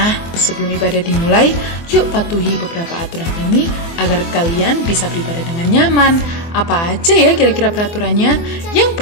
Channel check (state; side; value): late; right; 24 ms